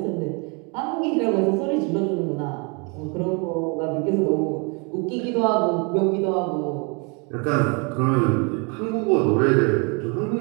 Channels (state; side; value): quieter; left; 32.2 dB